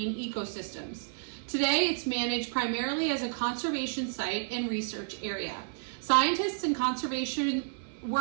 ecosystems. Today, it's managed primarily as a conservation site and research area. Scientists and conservation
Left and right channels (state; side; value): silent; left; 57 dB below the other